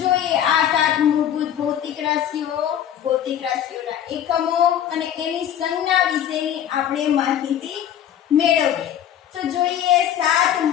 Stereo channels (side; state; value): right; quieter; 10.2 dB